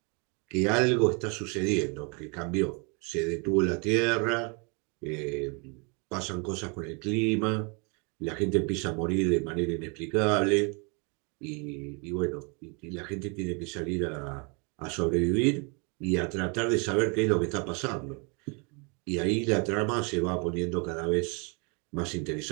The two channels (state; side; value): quieter; left; 33.6 dB